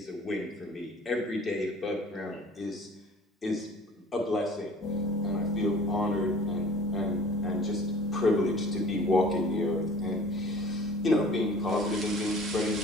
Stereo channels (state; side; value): normal; both; correlation 0.48